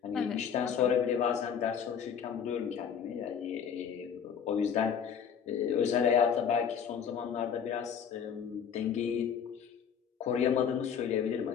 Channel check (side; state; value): right; quieter; 7.6 dB